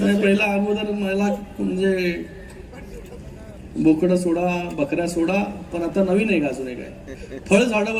पहिला अगोदर मला म्हणजे बोकडं सोडा बकऱ्या सोडा, पण आता नवीन आहे का अजून एक आहे, फळ झाडं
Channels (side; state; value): both; identical; correlation 1.00